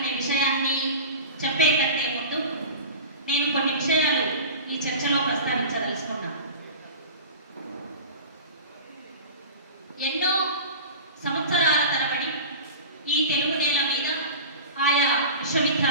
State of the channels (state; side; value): inverted; both; correlation -0.33